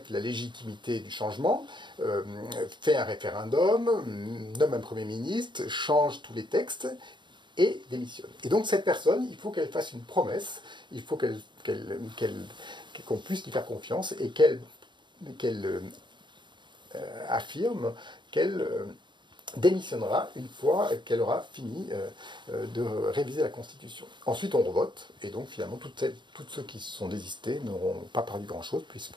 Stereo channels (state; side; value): late; left; 0.22 ms